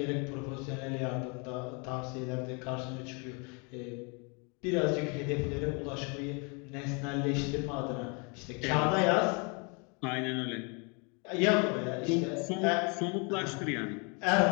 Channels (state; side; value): quieter; right; 33.4 dB